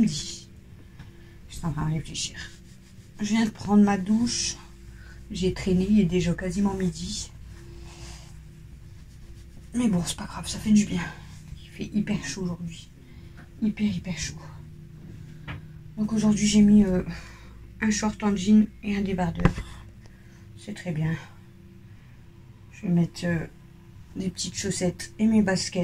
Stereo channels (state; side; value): identical; both; correlation 1.00